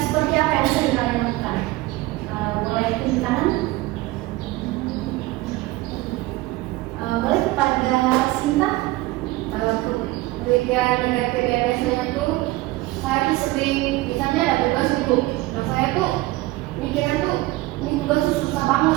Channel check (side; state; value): left; quieter; 18.9 dB